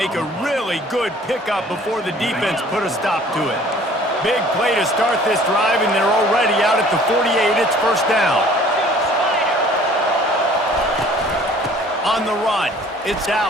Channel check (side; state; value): both; normal; correlation 0.52